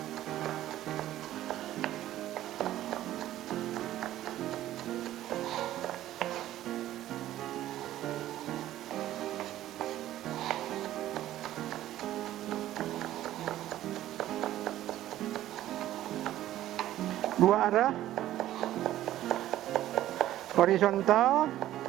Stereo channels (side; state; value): left; quieter; 13.6 dB